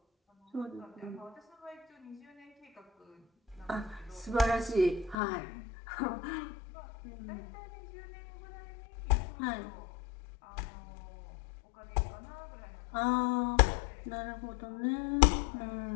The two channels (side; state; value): right; drops out; at 5.2 s